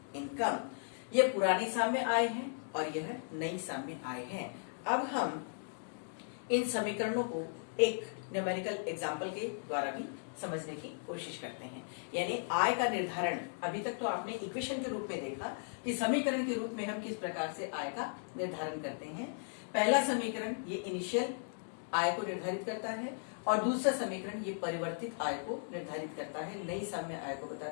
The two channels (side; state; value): right; silent; digital silence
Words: इनकम। ये पुरानी साम्य आय है और यह नई साम्य आय है। अब हम इन समीकरणों को एक न्यूमेरिकल एग्जाम्पल के द्वारा भी समझने की कोशिश करते हैं, यानी आय का निर्धारण। अभी तक तो आपने इक्वेशन के रूप में देखा कि समीकरण के रूप में हम किस प्रकार से आय का निर्धारण करते हैं। पहला समीकरण ये इनिशियल आय को निर्धारित करता है और दूसरा समीकरण ये परिवर्तित आय को निर्धारित करता है, नई साम्य आय को